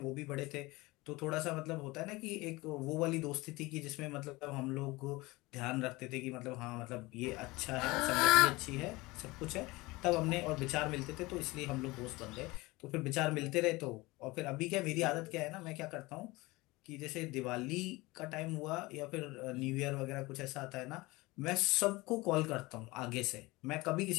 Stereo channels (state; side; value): quieter; right; 21.9 dB